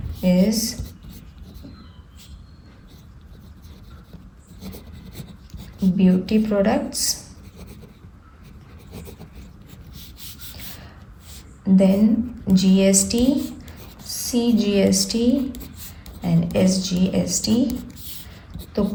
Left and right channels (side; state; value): both; identical; correlation 1.00